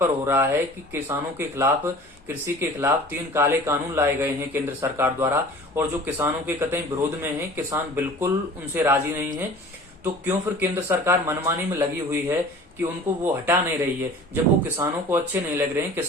पर हो रहा है कि किसानों के खिलाफ, कृषि के खिलाफ 3 काले कानून लाए गए हैं केंद्र सरकार द्वारा, और जो किसानों के कतई विरोध में हैं, किसान बिल्कुल उनसे राजी नहीं है। तो क्यों फिर केंद्र सरकार मनमानी में लगी हुई है कि उनको वो हटा नहीं रही है, जब वो किसानों को अच्छे नहीं लग रहे हैं।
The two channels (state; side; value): normal; both; correlation 0.43